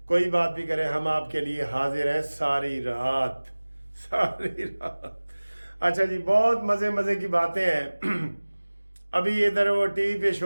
कोई बात भी करें, हम आपके लिए हाजिर हैं सारी रात सारी रात। अच्छा जी, बहुत मज़े मज़े की बातें हैं। अभी इधर वो टीवी पे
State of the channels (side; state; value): both; inverted; correlation -1.00